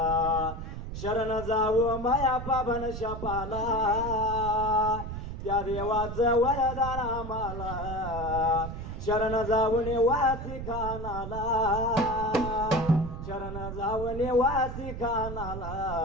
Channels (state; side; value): noise; right; rumble, 7 dB below the sound